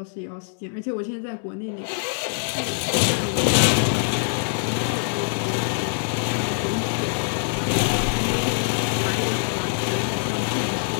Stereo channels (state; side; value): silent; right; 63 dB below the other